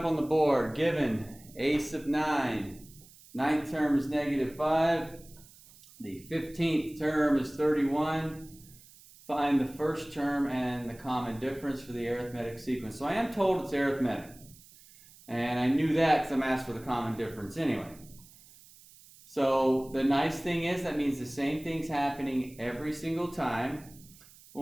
on the board, given a sub 9, 9th term is -5, the 15th term is 31. Find the first term and the common difference for the arithmetic sequence. So I am told it's arithmetic. And I knew that because I'm asked for the common difference anyway. So the nice thing is that means the same thing's happening every single time.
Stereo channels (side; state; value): right; noise; hiss, 23 dB below the sound